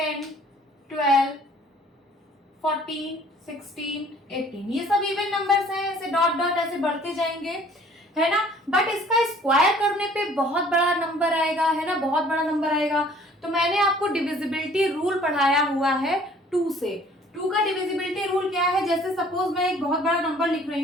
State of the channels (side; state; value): both; normal; correlation 0.54